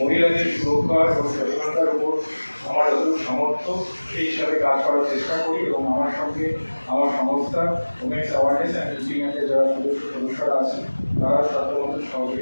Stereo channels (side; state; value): both; inverted; correlation -1.00